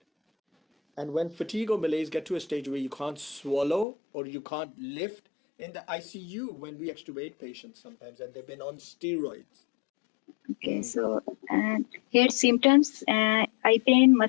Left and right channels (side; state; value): right; drops out; at 3.9 s